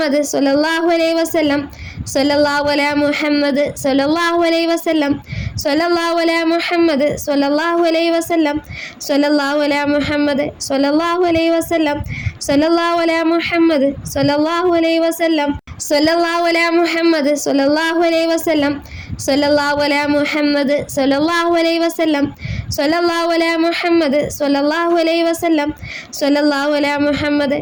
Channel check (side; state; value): both; identical; correlation 1.00